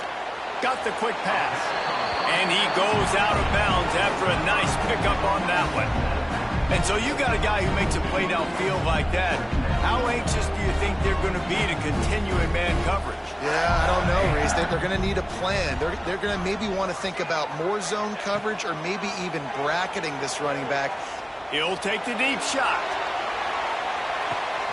Got the quick pass. And he goes out of bounds after a nice pickup on that one. And so you got a guy who makes a play downfield like that. How anxious do you think they're going to be to continue in man coverage? Yeah, I don't know, Reese. They're going to need a plan. They're going to maybe want to think about more zone coverage or maybe even bracketing this running back. He'll take the deep shot.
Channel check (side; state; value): both; identical; correlation 1.00